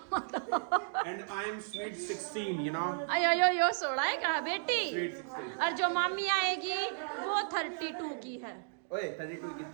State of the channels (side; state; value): left; silent; digital silence